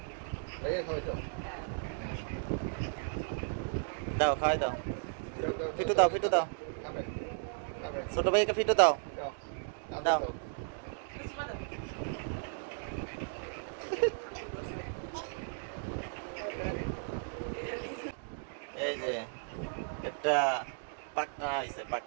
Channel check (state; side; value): silent; left; digital silence